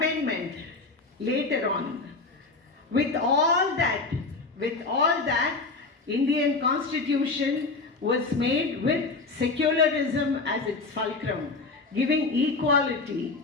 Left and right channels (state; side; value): quieter; right; 3.8 dB